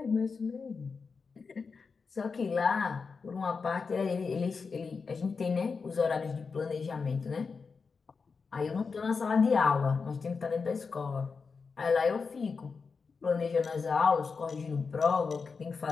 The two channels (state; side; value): quieter; right; 5.0 dB